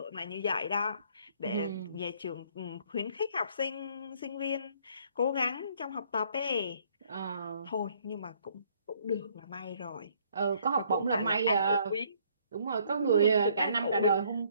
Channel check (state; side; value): inverted; both; correlation -0.63